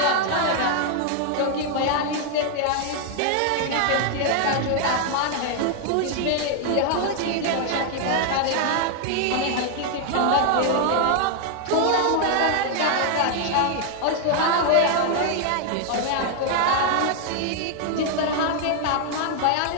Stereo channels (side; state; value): both; different; correlation 0.00